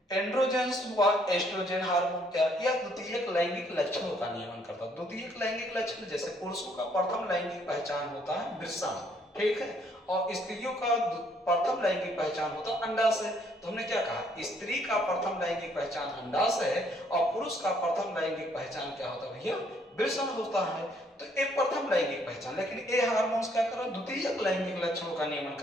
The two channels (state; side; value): normal; both; correlation 0.67